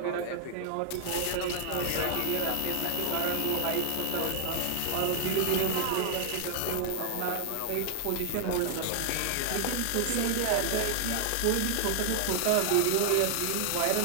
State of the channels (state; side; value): different; both; correlation 0.00